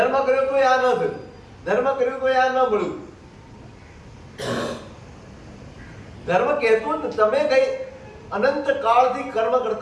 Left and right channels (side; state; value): both; identical; correlation 1.00